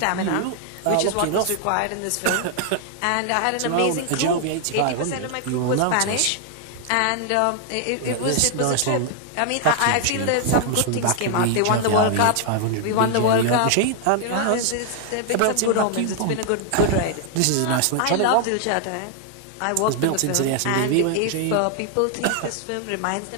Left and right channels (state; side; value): different; both; correlation 0.00